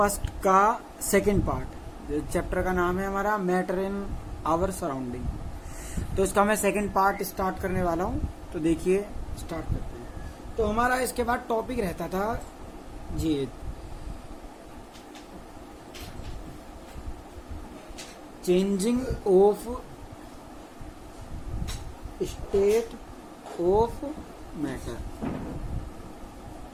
का सेकंड पार्ट। चैप्टर का नाम है हमारा मैटर इन आवर सराउंडिंग। तो इसका मैं सेकंड पार्ट स्टार्ट करने वाला हूँ। तो देखिए, स्टार्ट करते हैं। तो हमारा इसके बाद टॉपिक रहता था जी changing of state of matter,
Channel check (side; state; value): both; identical; correlation 1.00